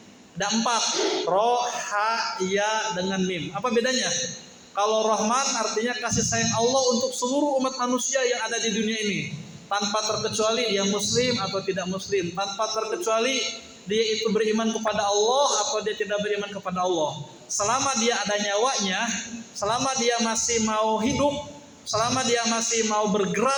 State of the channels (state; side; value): identical; both; correlation 1.00